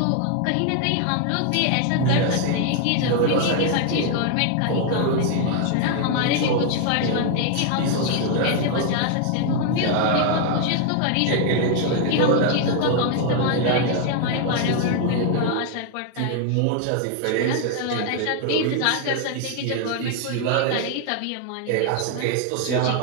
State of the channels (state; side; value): different; both; correlation 0.01